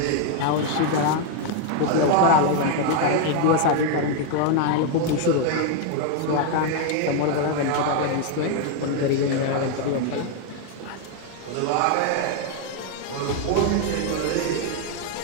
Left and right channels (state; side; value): different; both; correlation 0.00